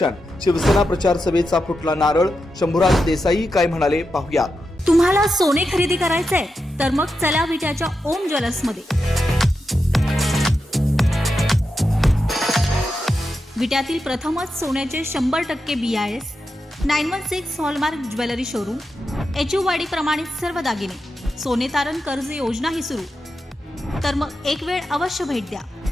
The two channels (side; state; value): both; normal; correlation 0.88